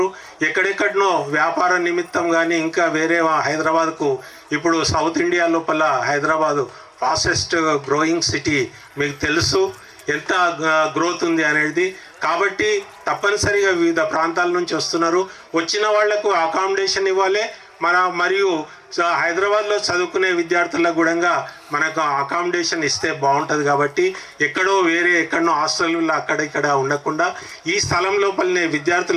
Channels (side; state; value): both; identical; correlation 1.00